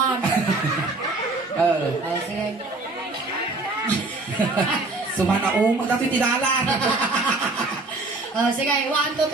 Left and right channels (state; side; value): quieter; left; 3.2 dB